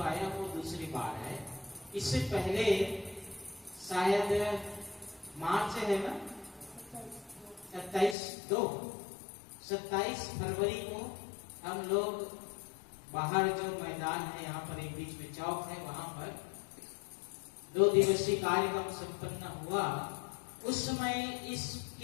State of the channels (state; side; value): drops out; right; at 8.2 s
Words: आया वो दूसरी बार है। इससे पहले शायद मार्च है ना, 27 फरवरी को हम लोग बाहर जो मैदान है, यहाँ पर एक बीच में चौक है, वहां पर 2 दिवसीय कार्यक्रम संपन्न हुआ। उस समय